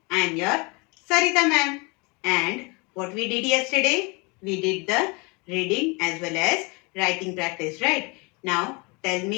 I am your Sarita ma'am. And what we did yesterday? We did the reading as well as writing practice, right? Now, tell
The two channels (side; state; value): right; quieter; 28.8 dB